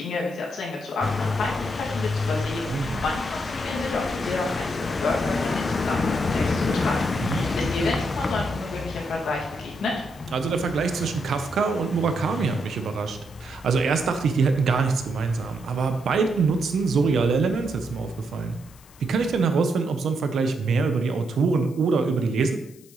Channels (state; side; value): noise; left; hiss, 25 dB below the sound